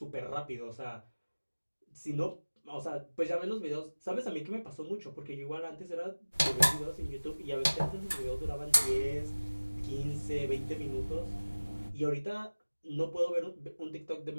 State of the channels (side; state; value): both; inverted; correlation -1.00